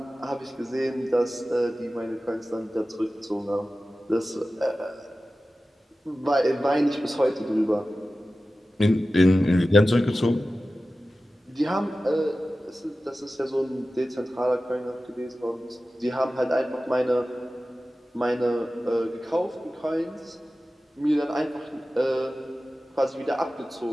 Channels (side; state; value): both; normal; correlation 0.95